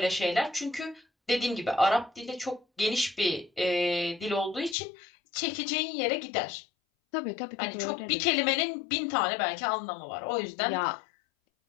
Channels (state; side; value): drops out; right; at 4.8 s